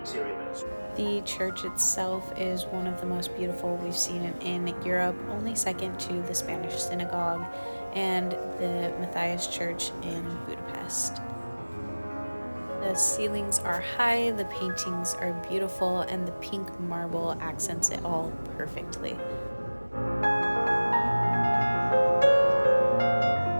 The church itself is one of the most beautiful we've seen in Europe, only second to the Spanish Synagogue and the Matthias Church in Budapest. The ceilings are high, the paintings are beautiful, and the pink marble accents it all perfectly.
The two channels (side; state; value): both; inverted; correlation -1.00